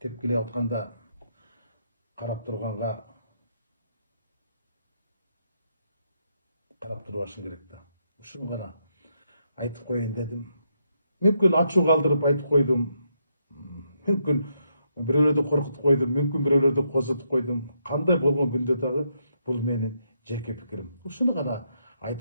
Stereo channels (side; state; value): both; inverted; correlation -0.78